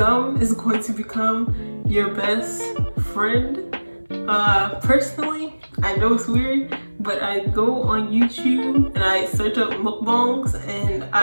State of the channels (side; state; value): both; inverted; correlation -1.00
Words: is going to become your best friend. Personally, I know it's weird, but I go on YouTube and I search up mukbangs, and